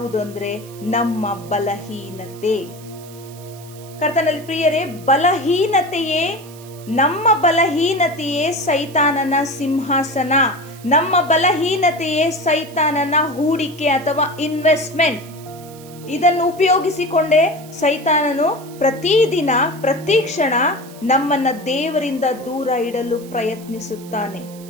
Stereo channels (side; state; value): right; noise; hiss, 21 dB below the sound